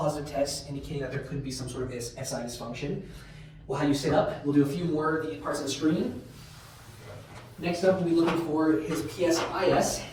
test, indicating that there could be some sort of SI dysfunction. We'll have you sit up. We'll do a few more of the parts of the screen. Next up, we'll be looking for his PSIS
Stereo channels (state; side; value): identical; both; correlation 1.00